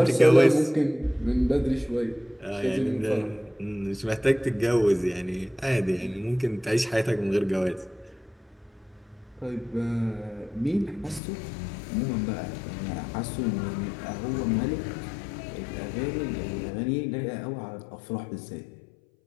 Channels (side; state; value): right; drops out; at 11.2 s